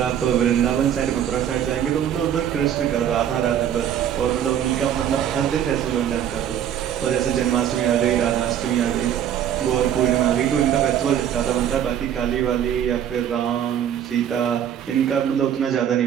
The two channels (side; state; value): left; quieter; 9.8 dB